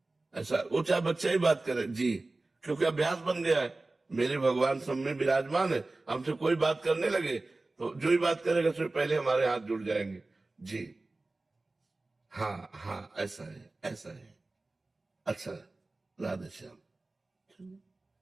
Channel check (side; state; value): left; quieter; 3.1 dB